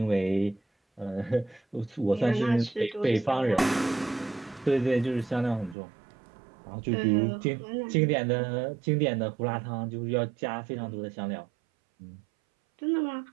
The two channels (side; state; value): left; drops out; at 5.8 s